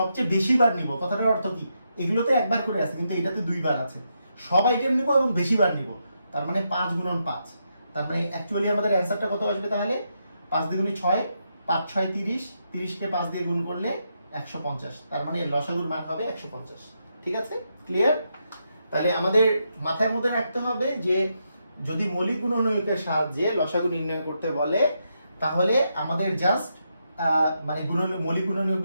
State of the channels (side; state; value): both; inverted; correlation -0.82